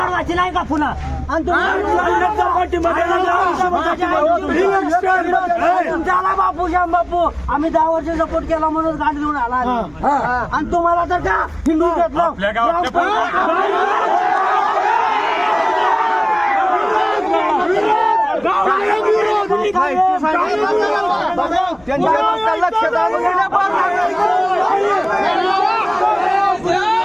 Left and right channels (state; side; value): noise; right; rumble, 29 dB below the sound